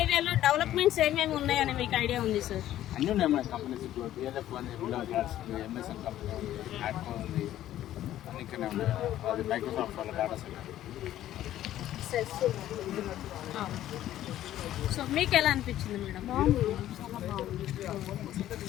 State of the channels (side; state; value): right; quieter; 12.9 dB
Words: డెవలప్మెంట్స్ ఏమేమి ఉన్నాయని మీకు ఐడియా ఉంది సార్? అన్నీ ఉన్నాయి మన కంపెనీస్, ఇప్పుడు బిఎల్ఎఫ్ అని ఎంఎస్ఎన్ కంపెనీ ఉంది, యాడ్కో ఉంది, అన్ని ఇక్కడనే ఉన్నాయి. అది మైక్రోసాఫ్ట్ వాళ్ళ డాటా సెంటర్. సో మీకు ఎలా అనిపించింది మేడం?